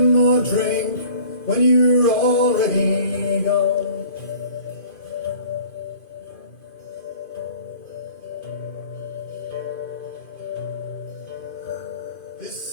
more drink when you're already gone? This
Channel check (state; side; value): late; right; 2.5 ms